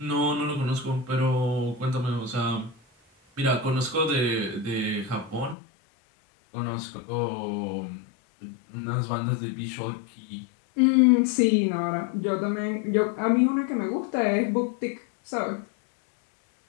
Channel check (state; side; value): drops out; right; at 5.6 s